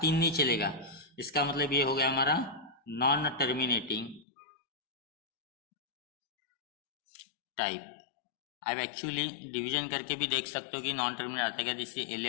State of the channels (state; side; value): drops out; right; at 4.2 s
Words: 3 नहीं चलेगा। इसका मतलब ये हो गया हमारा नॉन टर्मिनेटिंग टाइप। अब एक्चुअली डिवीजन करके भी देख सकते हो कि नॉन टर्मिनेट आता है क्या? जैसे